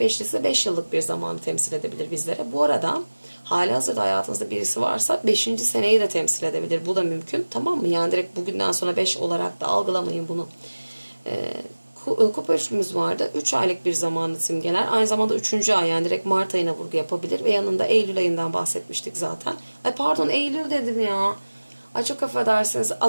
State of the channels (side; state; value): both; inverted; correlation -1.00